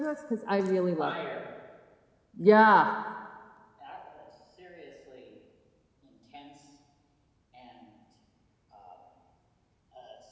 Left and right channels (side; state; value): both; identical; correlation 1.00